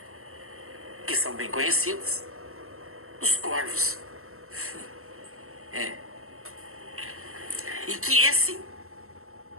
que são bem conhecidas, os corvos. E que esse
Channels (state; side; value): late; left; 0.62 ms